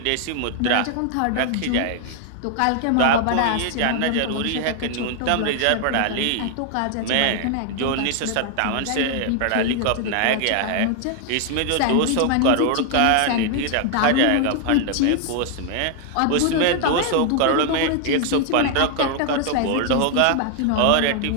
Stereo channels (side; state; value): both; different; correlation 0.00